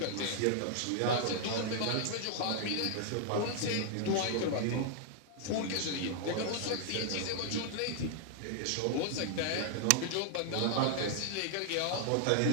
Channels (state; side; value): different; both; correlation -0.01